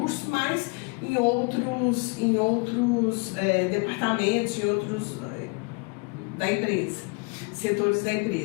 mas em outros departamentos, em outros da empresa, setores da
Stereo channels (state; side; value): quieter; right; 31.7 dB